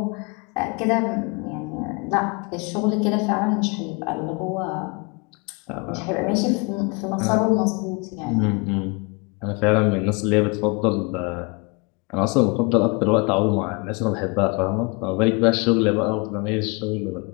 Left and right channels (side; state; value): right; quieter; 30.0 dB